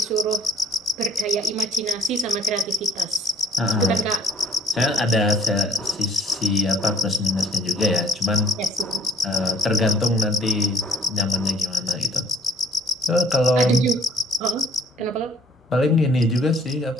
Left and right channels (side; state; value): both; normal; correlation 0.58